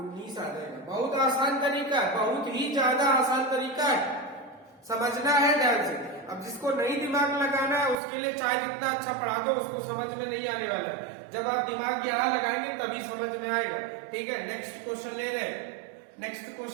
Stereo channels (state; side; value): drops out; left; at 8.0 s